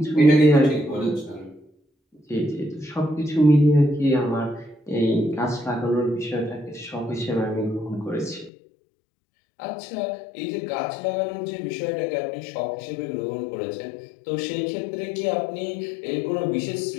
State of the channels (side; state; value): right; drops out; at 8.5 s